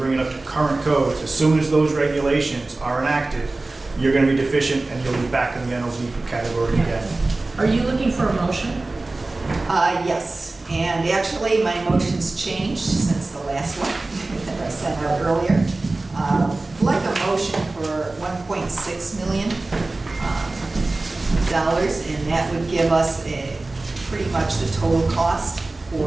it up to current codes, as soon as those regulations are enacted, you're gonna be deficient and you'll be back in the NLZ category again. Are you looking for a motion? Yes, and actually, my motion's changed since the last one that I sent out earlier. I'd like a motion for $1.6 million, and that would give us pretty much the total cost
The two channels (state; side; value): quieter; left; 3.1 dB